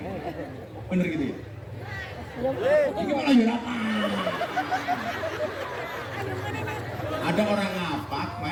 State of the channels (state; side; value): identical; both; correlation 1.00